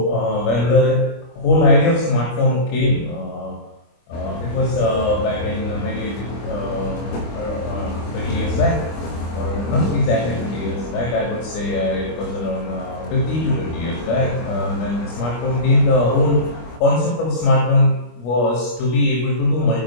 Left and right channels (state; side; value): late; right; 25 ms